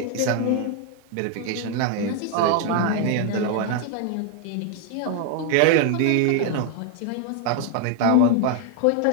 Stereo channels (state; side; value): different; both; correlation 0.00